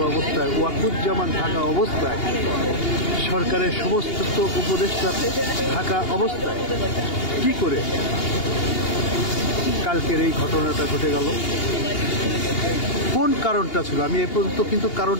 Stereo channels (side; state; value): right; late; 2.8 ms